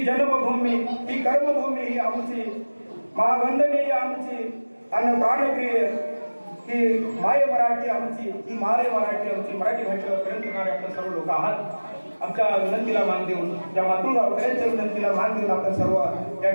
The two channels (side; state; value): both; inverted; correlation -1.00